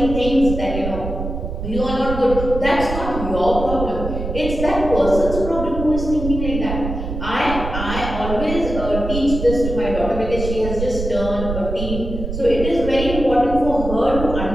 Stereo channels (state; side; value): noise; right; rumble, 5 dB below the sound